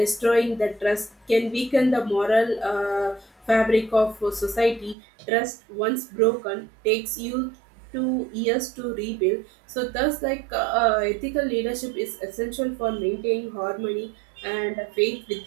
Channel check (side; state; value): left; drops out; at 5.0 s